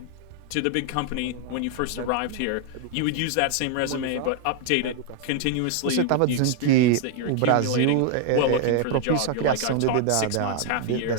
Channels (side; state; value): both; different; correlation 0.00